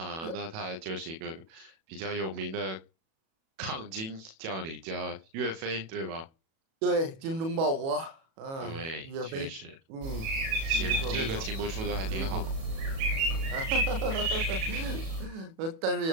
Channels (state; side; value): late; left; 37 ms